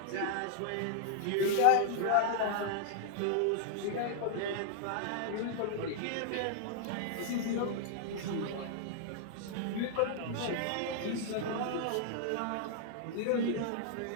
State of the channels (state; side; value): different; both; correlation -0.01